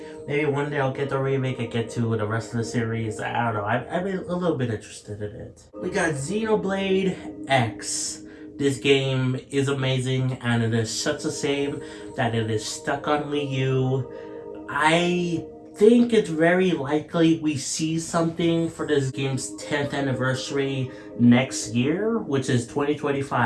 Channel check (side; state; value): both; identical; correlation 1.00